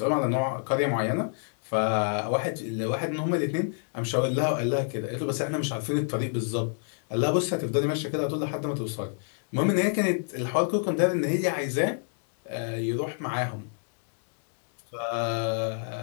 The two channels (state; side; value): silent; right; digital silence